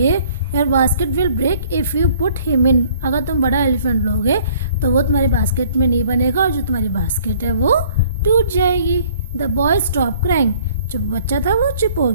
Your basket will break if you put him in. अगर तुम बड़ा एलिफेंट लोगे तो वो तुम्हारी बास्केट में नहीं बनेगा और जो तुम्हारी बास्केट है वो टूट जाएगी। द बॉय स्टॉप क्राइंग, जो बच्चा था वो चुप हो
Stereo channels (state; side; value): inverted; both; correlation -0.57